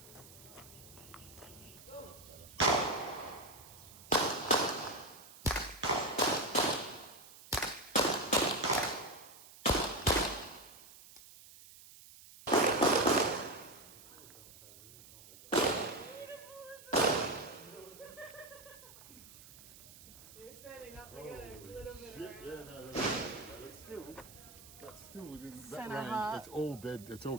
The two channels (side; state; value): right; noise; hiss, 19 dB below the sound